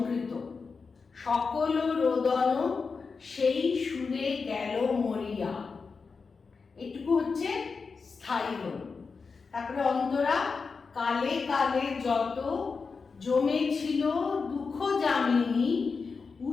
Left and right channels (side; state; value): right; quieter; 4.9 dB